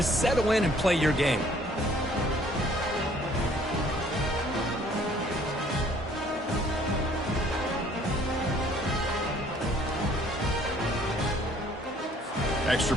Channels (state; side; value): normal; both; correlation 0.58